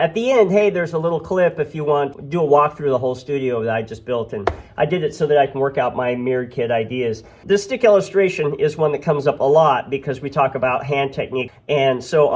the end, hey, there's a little clip if you want to do a walkthrough of the whole studio that I just built, and I did it so that I can work out my mirrored kit ideas. This stick illustration is one that comes up a lot because we talk about hand technique, and so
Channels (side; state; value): both; identical; correlation 1.00